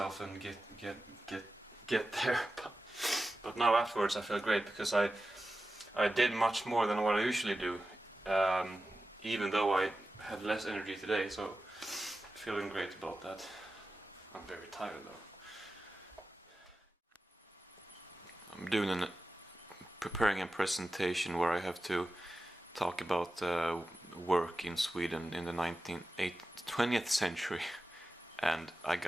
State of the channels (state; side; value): normal; both; correlation 0.93